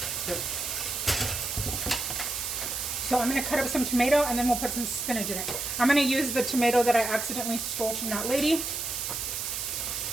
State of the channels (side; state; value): right; noise; hiss, 3 dB below the sound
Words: Yep. So I'm going to cut up some tomato and then we'll put some spinach in it. I'm going to use the tomato that I accidentally stole from that lady.